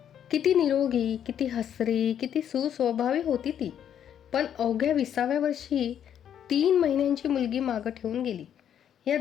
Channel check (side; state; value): right; quieter; 9.4 dB